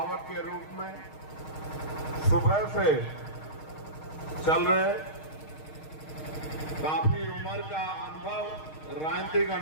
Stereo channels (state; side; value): late; right; 6.5 ms